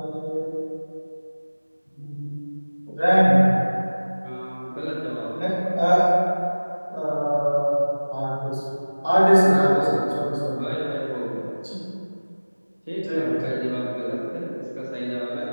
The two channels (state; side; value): inverted; both; correlation -1.00